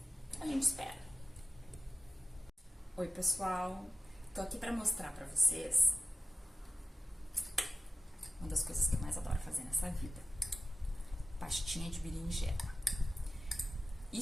gente espera. Oi, pessoal! Tô aqui pra mostrar pra vocês uma das coisas que eu mais adoro fazer nessa vida. Pastinha de berinjela.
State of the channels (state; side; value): normal; both; correlation 0.94